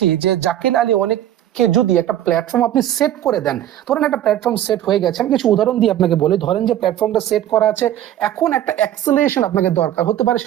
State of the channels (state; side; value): quieter; left; 12.0 dB